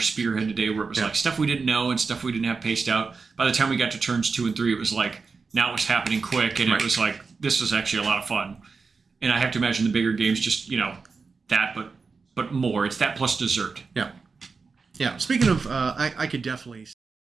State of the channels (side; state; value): left; quieter; 4.7 dB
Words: today, where it was like stuff we didn't know and stuff we didn't have paced out. By the time we got to turns 2 and 3, it was like, now it was happening quick, and it was like, this was actually a lot of fun. And I have to imagine the bigger games just, that, but more. It's that plus dessert. Yeah. Yeah. Speaking of, I could definitely.